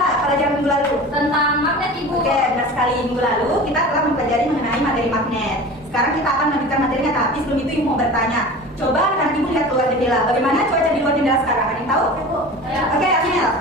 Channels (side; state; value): both; normal; correlation 0.36